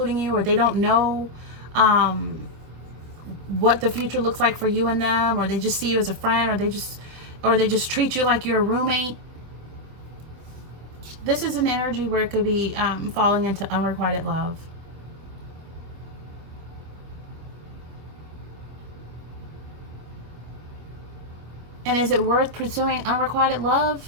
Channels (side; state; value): left; late; 25 ms